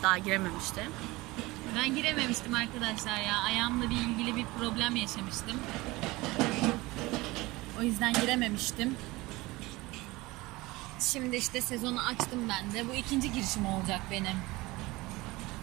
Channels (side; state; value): left; quieter; 21.1 dB